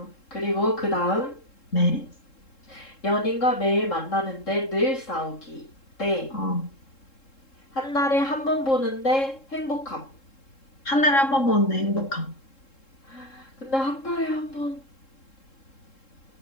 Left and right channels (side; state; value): right; late; 3.7 ms